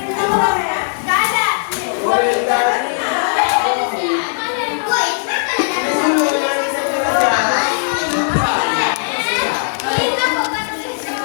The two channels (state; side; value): silent; right; digital silence